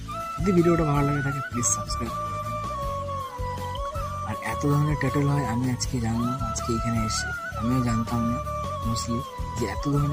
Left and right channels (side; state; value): both; identical; correlation 1.00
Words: যদি ভিডিওটা ভালো লাগে থাকে প্লিজ সাবস্ক্রাইব। আর এত ধরনের টেটেল হয় আমি আজকে জানলাম, আজকে এখানে এসে আমিও জানতাম না মোস্টলি যে এত